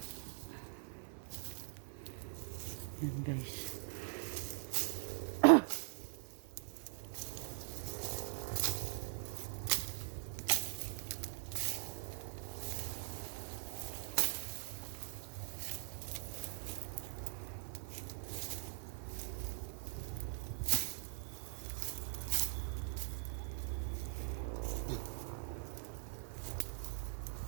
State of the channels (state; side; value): silent; left; digital silence